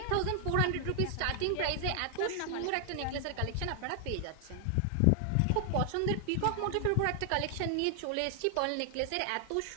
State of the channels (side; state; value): both; different; correlation 0.00